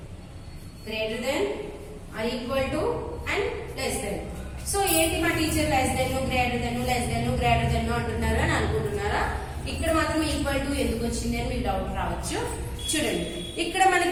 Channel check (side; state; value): both; identical; correlation 1.00